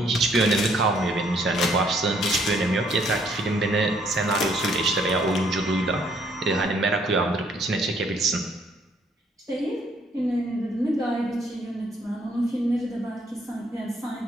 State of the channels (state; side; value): normal; both; correlation 0.66